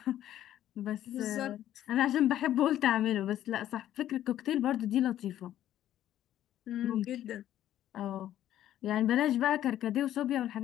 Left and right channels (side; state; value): right; quieter; 12.2 dB